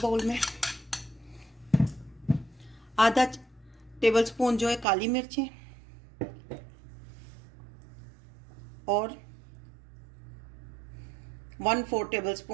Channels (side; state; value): left; drops out; at 4.9 s